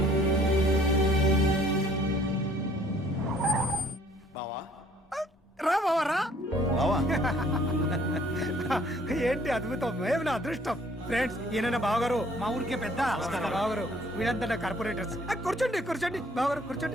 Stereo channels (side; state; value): both; normal; correlation 0.59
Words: రా బావా రా. బావా, ఏంటి అద్భుతం, ఏమి నా అదృష్టం. ఫ్రెండ్స్, ఈయన నా బావగారు, మా ఊరికే పెద్ద బావగారు. వీళ్ళంతా నా కార్పొరేటర్స్. కూర్చోండి కూర్చోండి బావగారు,